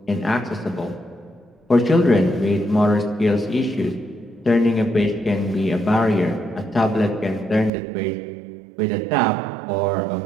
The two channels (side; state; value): left; drops out; at 7.7 s